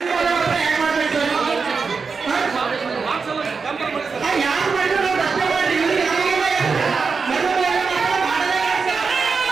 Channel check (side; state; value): left; quieter; 5.0 dB